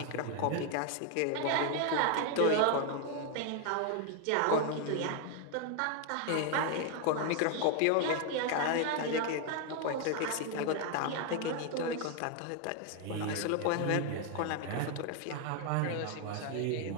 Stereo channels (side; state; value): both; different; correlation 0.01